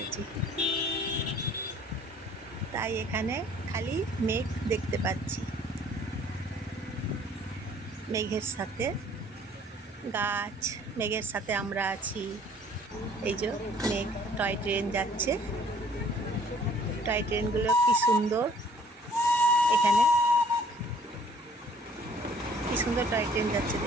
তাই এখানে খালি মেঘ দেখতে পাচ্ছি। মেঘের সাথে গাছ, মেঘের সাথে আমরা আছি। এই যে মেঘ, টয় ট্রেন যাচ্ছে। টয় ট্রেনগুলো কি সুন্দর, এখানে কি সুন্দর টয় ট্রেন যাচ্ছে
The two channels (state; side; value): normal; both; correlation 0.57